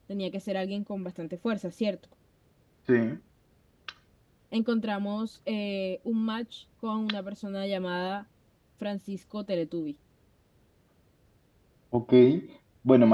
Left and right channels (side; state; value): both; identical; correlation 1.00